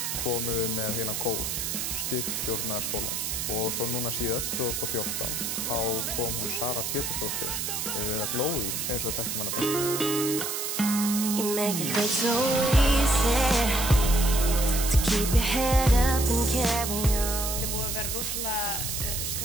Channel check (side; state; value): right; noise; hiss, 2 dB below the sound